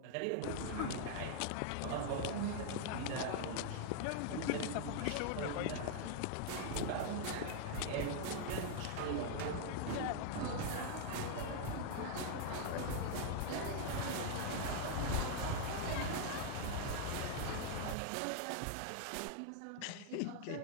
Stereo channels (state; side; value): different; both; correlation 0.00